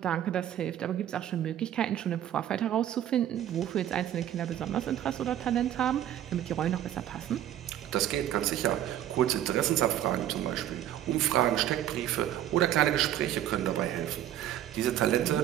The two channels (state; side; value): quieter; left; 11.7 dB